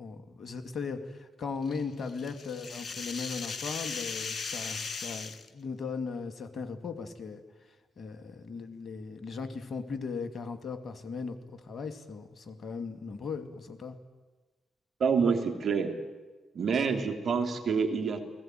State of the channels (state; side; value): normal; both; correlation 0.74